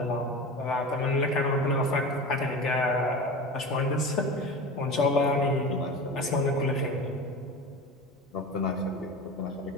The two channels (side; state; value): both; normal; correlation 0.30